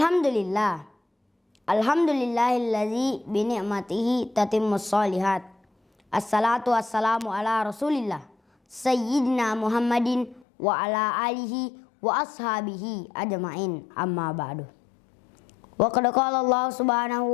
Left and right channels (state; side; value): drops out; right; at 10.5 s